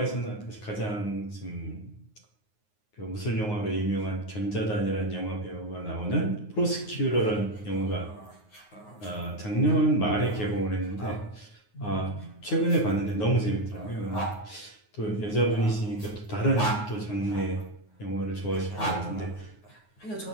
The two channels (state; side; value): late; right; 9.5 ms